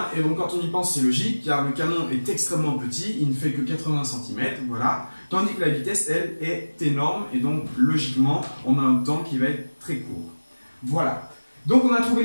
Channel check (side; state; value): both; inverted; correlation -1.00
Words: et donc quand on y pense, c'est logique, car le canon est extrêmement petit, il ne fait que 80 cm, voilà. Tandis que la vitesse, elle, est énorme, et donc logiquement, on a un temps qui va être très court. Voilà. Donc on a trouvé